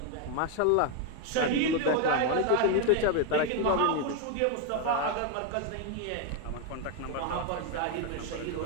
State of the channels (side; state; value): both; different; correlation 0.01